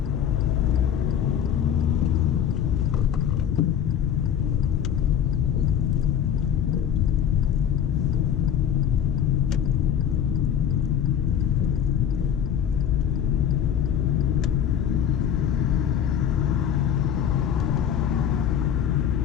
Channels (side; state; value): right; quieter; 9.1 dB